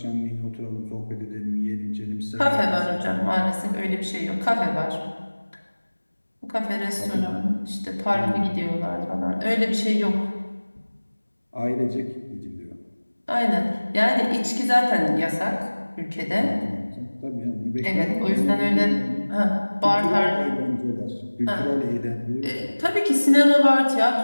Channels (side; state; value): both; inverted; correlation -1.00